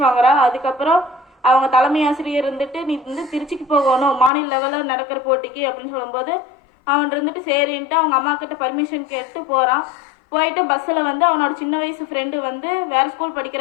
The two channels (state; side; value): drops out; right; at 4.3 s